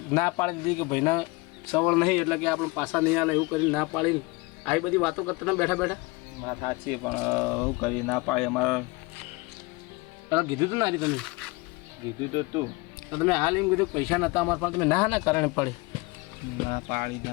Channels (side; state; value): right; quieter; 24.8 dB